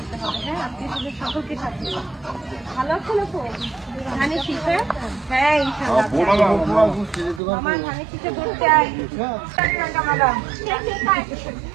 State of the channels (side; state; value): left; drops out; at 7.4 s